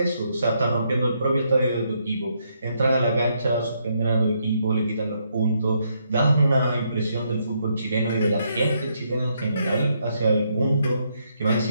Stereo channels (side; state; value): both; inverted; correlation -0.76